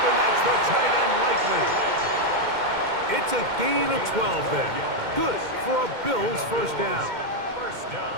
and that's the tight end likely. It's a gain of 12 there. Good for a Bills first down. First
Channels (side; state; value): left; late; 2.1 ms